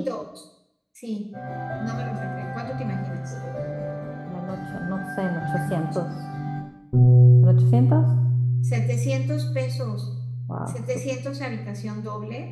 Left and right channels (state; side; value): identical; both; correlation 1.00